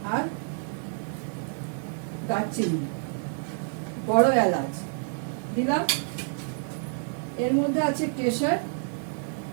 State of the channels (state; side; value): silent; left; 59 dB below the other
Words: আর দারচিনি, বড় এলাচ দিলাম। এর মধ্যে আছে কেশর